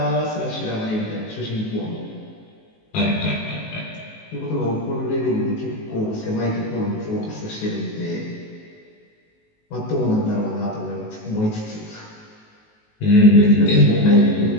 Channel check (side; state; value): right; late; 19 ms